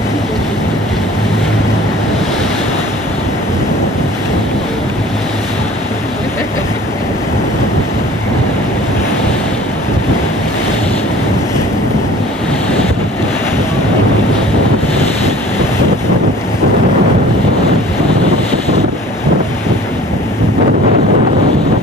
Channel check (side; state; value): both; normal; correlation 0.47